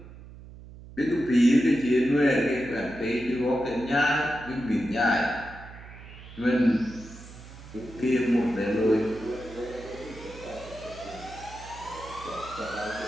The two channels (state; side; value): noise; right; hum, 17 dB below the sound